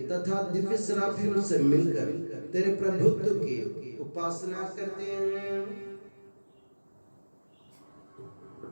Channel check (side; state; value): both; inverted; correlation -1.00